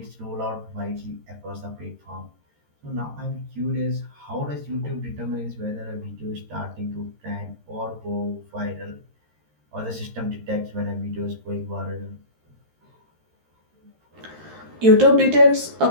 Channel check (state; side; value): late; left; 13 ms